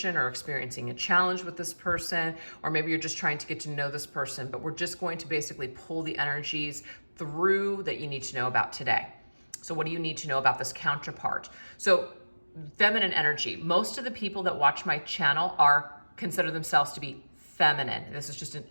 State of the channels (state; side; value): inverted; both; correlation -1.00